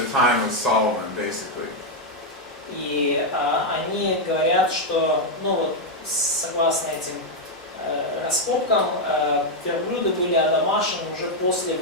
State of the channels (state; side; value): normal; both; correlation 0.01